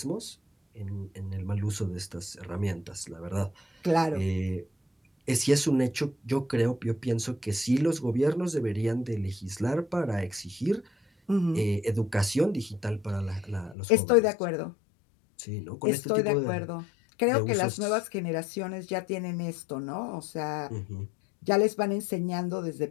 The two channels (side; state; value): right; drops out; at 13.8 s